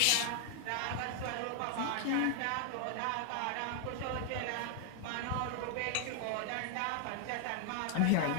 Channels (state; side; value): different; both; correlation 0.00